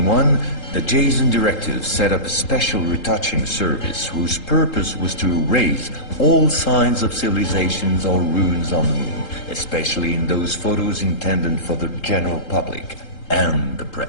the Jason Directive set up a special retouching service whose purpose was to erase all signs of civilizations or ruins on the moon, especially in those photos intended for the general public and the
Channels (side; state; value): right; late; 3.8 ms